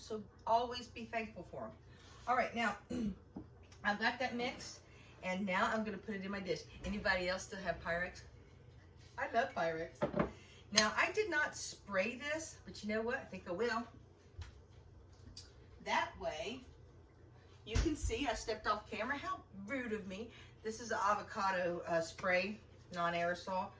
always be thankful for them. All right, now I've got that mixed, and now I'm going to put it in my dish. Anybody else still have Pyrex? I love Pyrex. Now, I did not spray this, but you know what? I think I will. That way, you can see I stepped off camera. How rude of me. This is an avocado spray, non-aerosol.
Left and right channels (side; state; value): both; identical; correlation 1.00